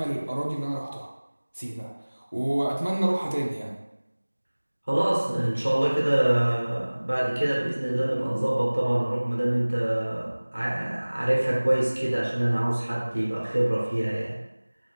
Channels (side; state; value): both; inverted; correlation -1.00